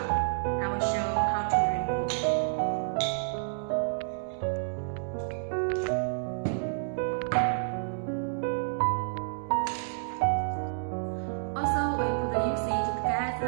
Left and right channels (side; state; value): left; silent; digital silence